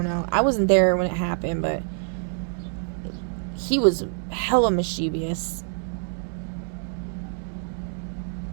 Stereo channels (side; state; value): left; silent; 61 dB below the other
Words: know. I wasn't there when it happened, but he was hella mischievous.